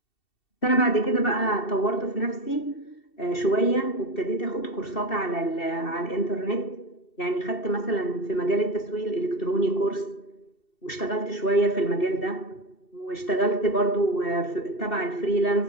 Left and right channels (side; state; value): right; late; 2.7 ms